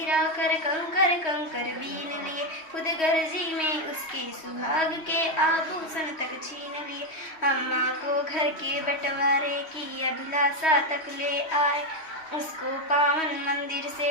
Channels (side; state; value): right; late; 3.1 ms